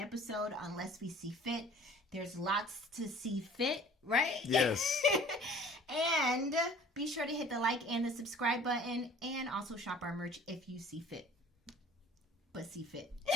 unless we see fit. There's lots to see fit, right? Yes. And be sure to hit the like and the subscribe button and also shop our merch if you see fit. But see fit.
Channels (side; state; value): both; normal; correlation 0.50